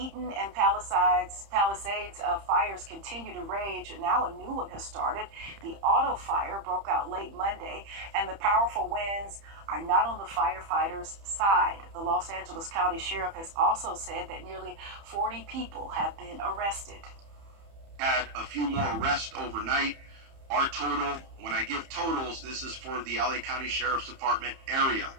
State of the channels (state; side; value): late; left; 30 ms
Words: and Palisades fires continue to rage. Now a new one has started. The auto fire broke out late Monday, and the powerful winds are not on the firefighters' side. The Los Angeles County Sheriff has also said that nearly 40 people have been arrested. Had a few more arrests overnight. Our total, when I give totals, this is for the LA County Sheriff's Department area